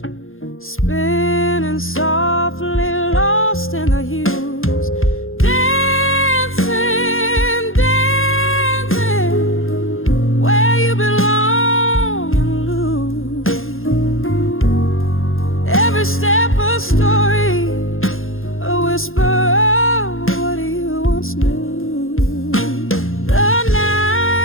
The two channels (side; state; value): right; late; 0.60 ms